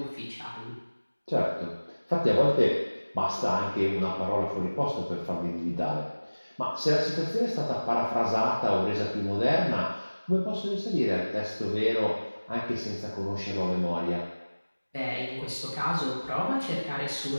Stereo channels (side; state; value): both; inverted; correlation -1.00